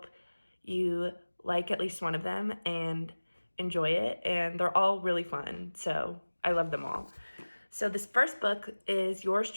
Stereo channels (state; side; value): inverted; both; correlation -1.00